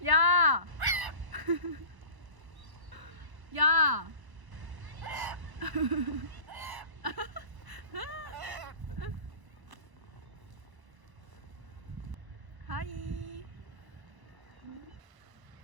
야! 야! 하이.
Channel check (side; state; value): left; late; 1.0 ms